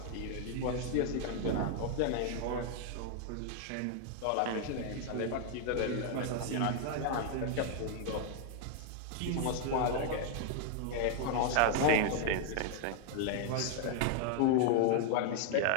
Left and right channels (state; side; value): different; both; correlation 0.00